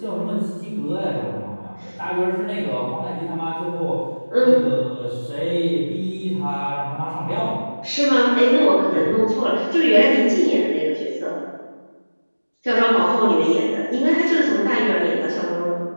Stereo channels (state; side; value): inverted; both; correlation -1.00